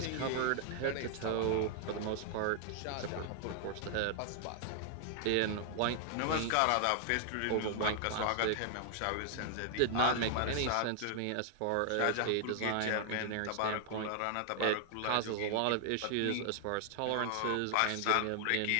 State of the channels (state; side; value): different; both; correlation 0.00